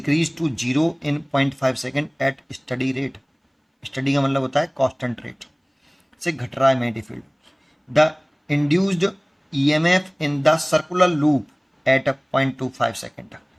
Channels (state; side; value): identical; both; correlation 1.00